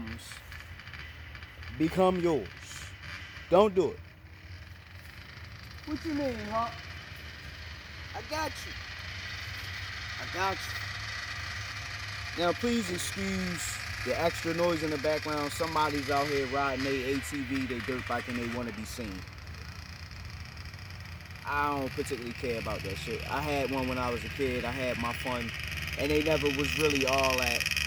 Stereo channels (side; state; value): both; identical; correlation 1.00